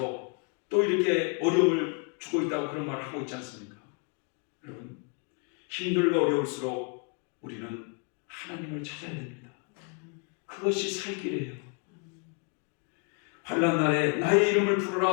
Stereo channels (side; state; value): right; quieter; 36.8 dB